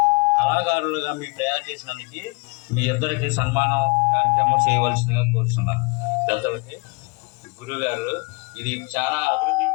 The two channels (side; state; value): right; quieter; 28.2 dB